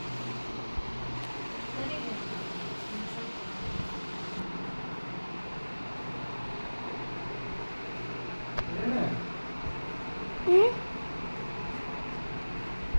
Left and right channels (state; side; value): inverted; both; correlation -1.00